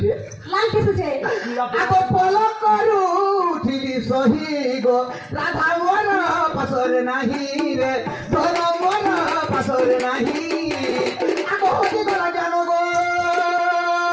तुझे आगो फल करू उठिली सही गो राधा मोर बसरे नाही रे धन मोर बसरे नाही आगो होती गला जानो गो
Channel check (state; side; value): identical; both; correlation 1.00